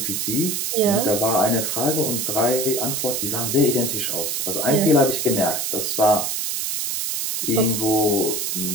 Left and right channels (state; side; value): noise; right; hiss, 1 dB below the sound